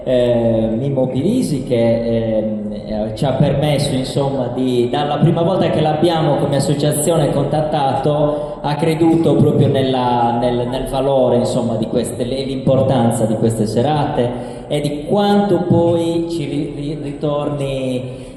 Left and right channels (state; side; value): identical; both; correlation 1.00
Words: Mimmo Pirisi che ci ha permesso, insomma, dalla prima volta che l'abbiamo come associazione contattato, ha creduto proprio nel valore, insomma, di queste, l'importanza di queste serate e di quanto poi ci ritorni